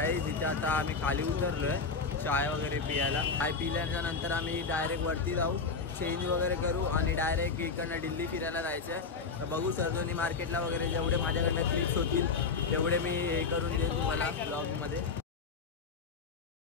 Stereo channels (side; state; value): right; quieter; 4.9 dB